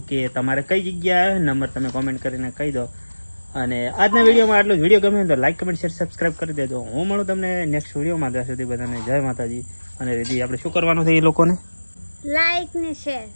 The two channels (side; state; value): both; inverted; correlation -1.00